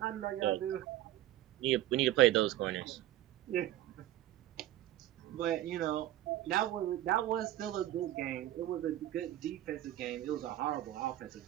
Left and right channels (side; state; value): left; quieter; 13.9 dB